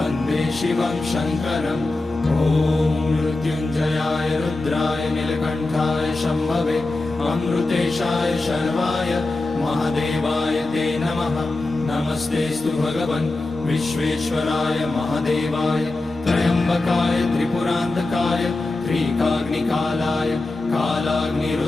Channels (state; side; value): quieter; right; 3.0 dB